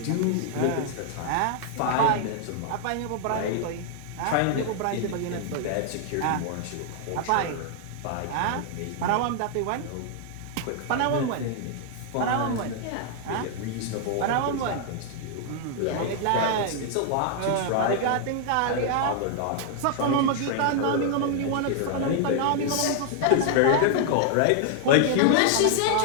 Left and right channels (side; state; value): both; different; correlation 0.00